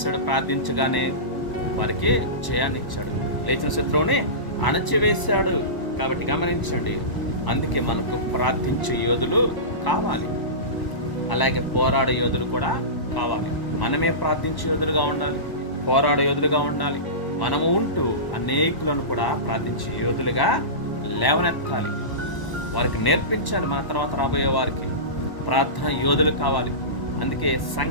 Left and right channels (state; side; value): late; right; 1.0 ms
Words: ప్రార్థించగానే వారికి జయాన్ని ఇచ్చాడు, లేచిన శత్రువుని అణచివేశాడు. కాబట్టి గమనించండి, అందుకే మనకు ప్రార్థించే యోధులు కావాలి, అలాగే పోరాడే యోధులు కూడా కావాలి. మనమే ప్రార్థించే యోధులుగా ఉండాలి, పోరాడే యోధులుగా ఉండాలి. మనము ఉంటూ అనేకులను కూడా ప్రార్థించి యోధులుగా లేవనెత్తాలి, వారికి నేర్పించాలి. మన తర్వాత రాబోయే వారికి ప్రార్థన యోధులు కావాలి. అందుకే